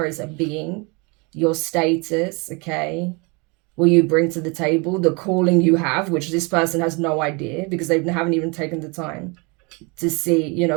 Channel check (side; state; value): left; quieter; 29.7 dB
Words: as a being, your status, okay? What you bring to the table, the calling you have, which this person has no idea because they haven't even taken the time to see, you